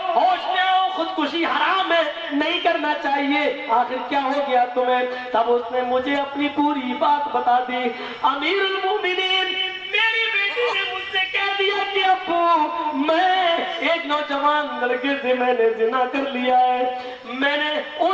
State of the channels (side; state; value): both; identical; correlation 1.00